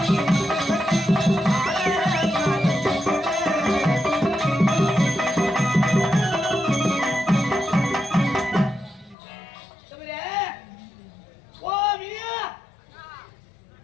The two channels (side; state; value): right; drops out; at 9.2 s